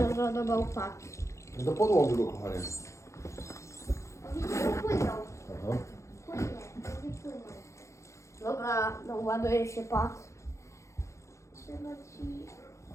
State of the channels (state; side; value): late; right; 0.14 ms